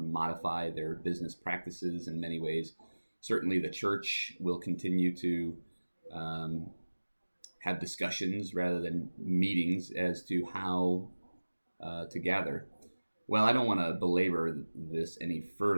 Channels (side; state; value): both; inverted; correlation -1.00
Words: their business practices in many ways. Certainly the church will continue to have discussions rather than meetings as to how to gather. Well, I don't want to belabor this any